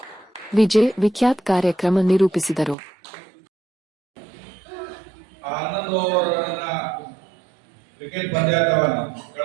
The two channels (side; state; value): left; drops out; at 2.8 s